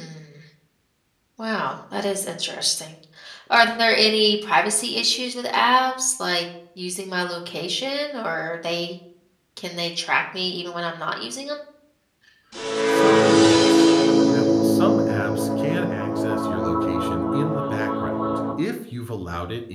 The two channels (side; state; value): both; identical; correlation 1.00